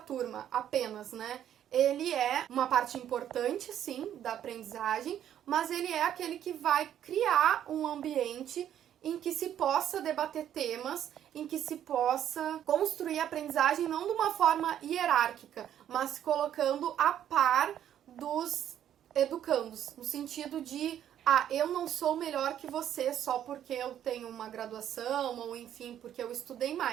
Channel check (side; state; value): left; quieter; 10.5 dB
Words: apenas, né? Ele é uma parte importante, sim, da aprendizagem, mas ele é aquele que vai criar um ambiente em que se possa debater temas, em que se possa construir a aprendizagem não de uma forma hierárquica, mas colocando a par dos educandos, no sentido de, eu não sou melhor que você só porque eu tenho uma graduação, ou enfim, porque eu estudei